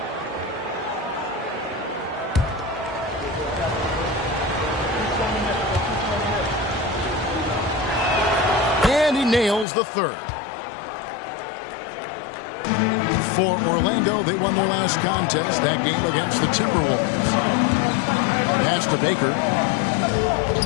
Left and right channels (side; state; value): right; drops out; at 9.7 s